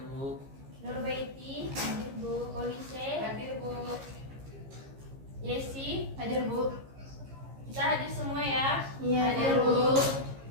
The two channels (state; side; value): late; left; 15 ms